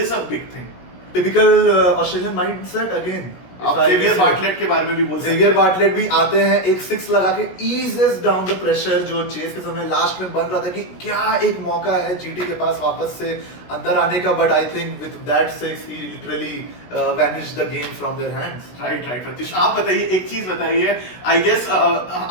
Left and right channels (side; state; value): right; late; 16 ms